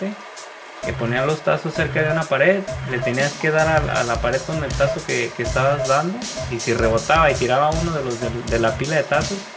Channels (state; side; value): identical; both; correlation 1.00